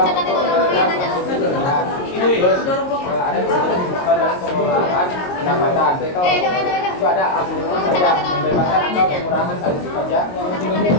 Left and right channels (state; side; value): late; right; 22 ms